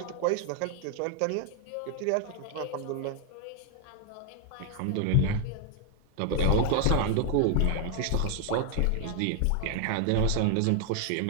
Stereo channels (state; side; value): different; both; correlation 0.00